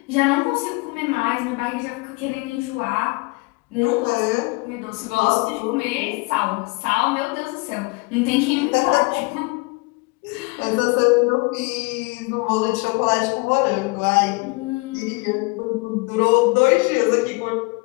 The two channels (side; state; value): right; quieter; 27.5 dB